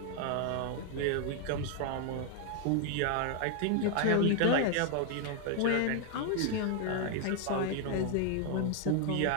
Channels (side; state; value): both; different; correlation 0.00